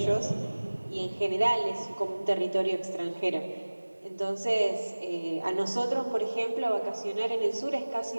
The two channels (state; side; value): inverted; both; correlation -1.00